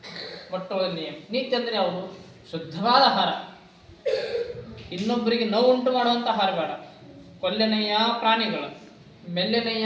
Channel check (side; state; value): both; identical; correlation 1.00